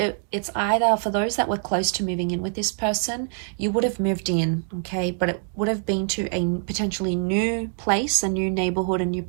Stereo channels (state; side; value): silent; left; 62 dB below the other